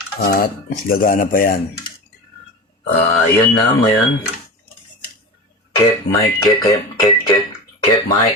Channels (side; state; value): both; normal; correlation 0.28